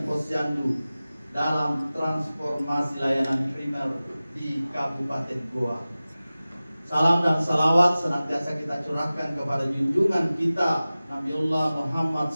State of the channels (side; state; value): both; inverted; correlation -0.97